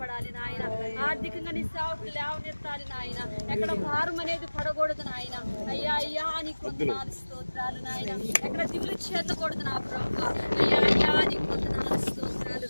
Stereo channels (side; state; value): both; inverted; correlation -1.00